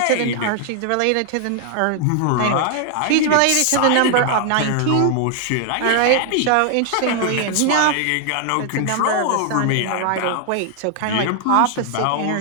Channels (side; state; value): both; different; correlation 0.00